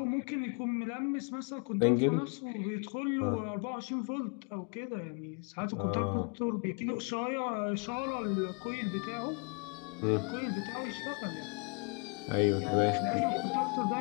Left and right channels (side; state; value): right; quieter; 34.7 dB